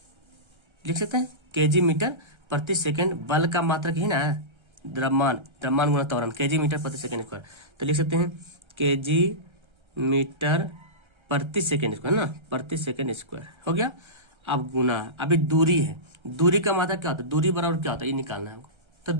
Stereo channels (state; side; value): late; left; 1.3 ms